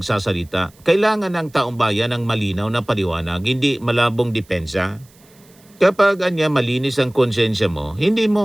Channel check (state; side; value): noise; right; hiss, 29 dB below the sound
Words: Kailangan ng taong bayan ng malinaw na paliwanag, hindi malabong depensa. Kapag malinis ang konsensya mo, hindi